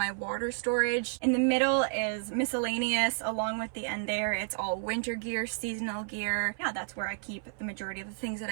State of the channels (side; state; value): left; silent; 57 dB below the other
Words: water storage. In the middle is miscellaneous. Along with the end there, it's all winter gear, seasonal gear. Yeah, that's where I keep the majority of the things that